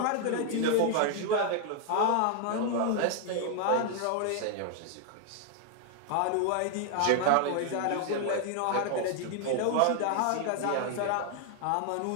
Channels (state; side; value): different; both; correlation 0.00